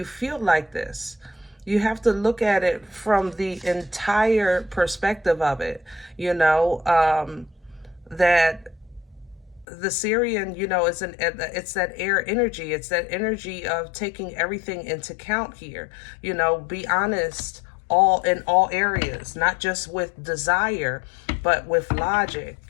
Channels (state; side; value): drops out; right; at 9.7 s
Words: feel like this. You have to look at it from the entire perspective of it, you know, that the Syrian, you know, it's that air energy. It's that energy of taking everything into count here. You know, be honest in all areas, not just with desire, but with logic.